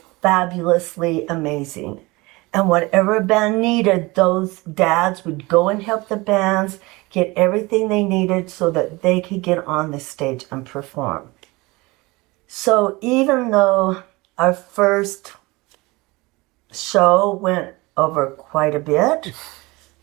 fabulously amazing. And whatever band needed, those dads would go and help the bands get everything they needed so that they could get on the stage and perform. So even though our first show went over quite a bit,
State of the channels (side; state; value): left; quieter; 23.1 dB